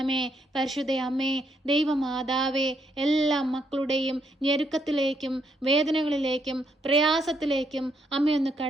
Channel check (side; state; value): both; normal; correlation 0.75